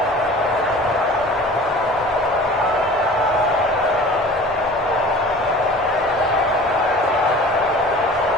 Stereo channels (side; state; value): both; normal; correlation 0.43